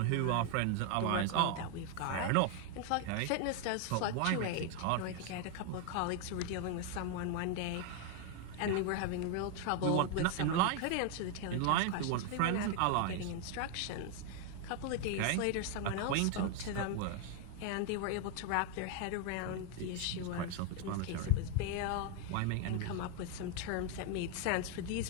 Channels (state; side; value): different; both; correlation 0.01